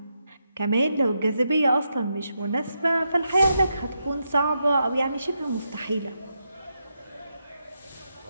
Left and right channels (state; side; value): inverted; both; correlation -0.84